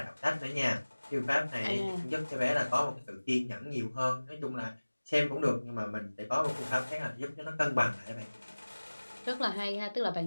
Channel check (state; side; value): inverted; both; correlation -1.00